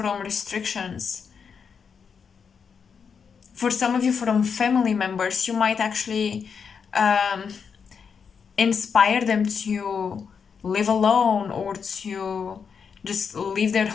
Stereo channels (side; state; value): right; quieter; 6.3 dB